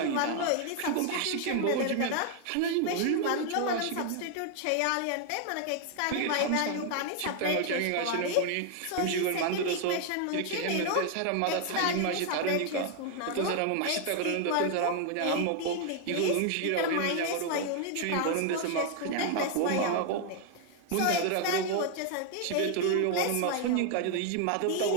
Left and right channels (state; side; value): different; both; correlation 0.00